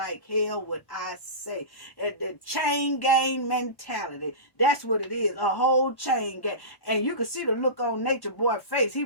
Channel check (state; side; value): late; right; 1.1 ms